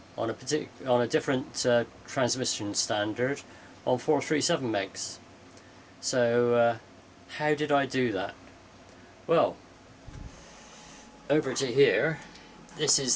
on a different transmission standard on 437 megs. So how did I do that? Well, over to here, this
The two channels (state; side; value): identical; both; correlation 1.00